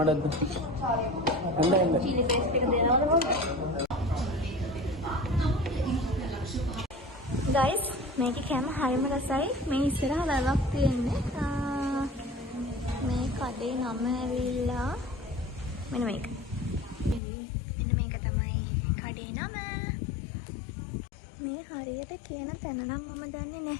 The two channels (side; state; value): right; drops out; at 17.2 s